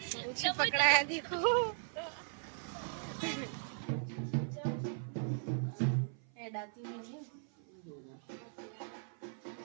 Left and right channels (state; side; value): silent; left; 52 dB below the other